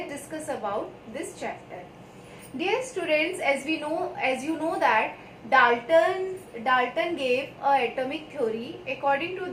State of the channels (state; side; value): identical; both; correlation 1.00